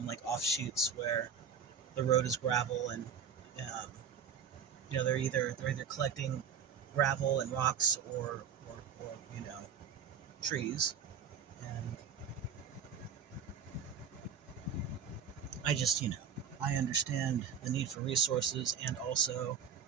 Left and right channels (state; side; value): quieter; left; 7.1 dB